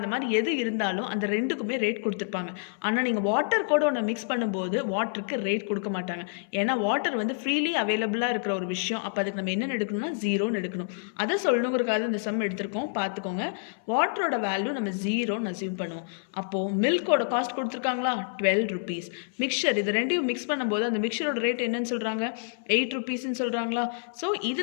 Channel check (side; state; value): right; silent; 59 dB below the other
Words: மாதிரி எது இருந்தாலும் அந்த ரெண்டுக்குமே ரேட் கொடுத்துருப்பாங்க. ஆனால் நீங்கள் வாட்டர் கூட ஒன்று மிக்ஸ் பண்ணும்போது வாட்டருக்கு ரேட் கொடுக்க மாட்டாங்க. ஏன்னா வாட்டர் வந்து ஃப்ரீலி அவைலபிளாக இருக்கிற ஒரு விஷயம். அப்போ அதுக்கு நம்ம என்ன எடுக்கணும்னா 0ன்னு எடுக்கணும். அதை சொல்லணுங்கிறக்காக இந்த சம் எடுத்திருக்கோம். பார்த்துக்கோங்க, வாட்டரோட வேல்யூ நம்ம 0ன்னு அசியூம் பண்ணுவோம். அப்போது மில்கோட காஸ்ட் கொடுத்துருக்காங்களா, ₹12. மிக்சர், இது ரெண்டையும் மிக்ஸ் பண்ணும்போது அந்த மிக்சரோட ரேட் என்னன்னு சொல்கிறாங்க, ₹8ன்னு சொல்கிறாங்களா? ஸோ